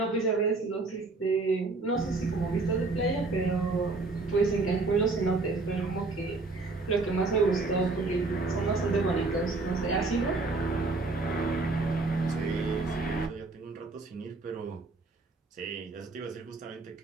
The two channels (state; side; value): quieter; left; 3.5 dB